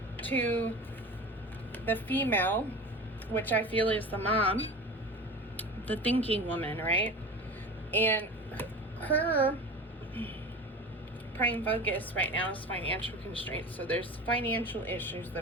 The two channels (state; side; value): normal; both; correlation 0.32